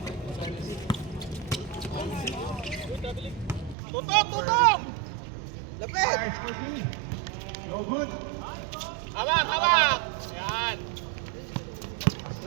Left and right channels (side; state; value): left; drops out; at 3.8 s